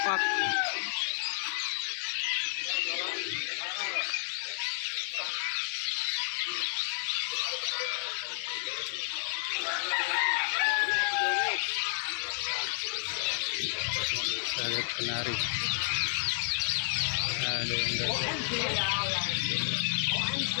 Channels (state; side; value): silent; right; digital silence